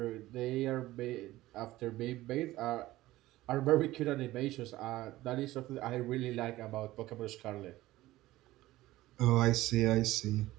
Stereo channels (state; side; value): quieter; left; 16.8 dB